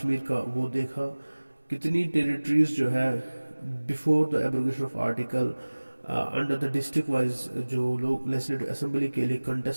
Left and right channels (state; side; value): inverted; both; correlation -1.00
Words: का वो देखा, कितनी टेरिटरीज जो है before the abrogation of article under the district wise जो लोग लेजिस्लेटिव असेंबली के लिए